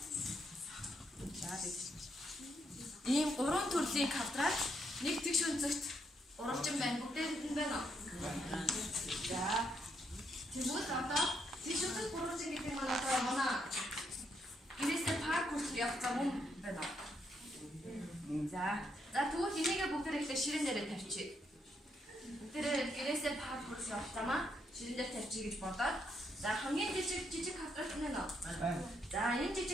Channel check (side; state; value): both; normal; correlation 0.76